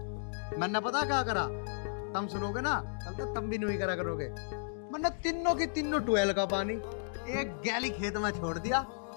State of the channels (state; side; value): silent; right; digital silence